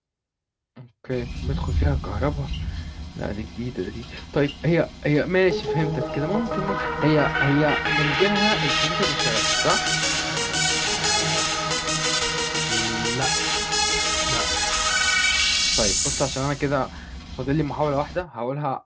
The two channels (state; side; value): identical; both; correlation 1.00